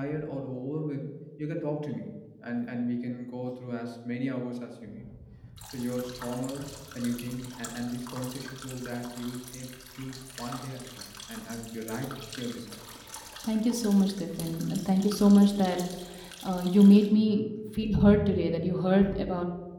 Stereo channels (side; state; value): both; identical; correlation 1.00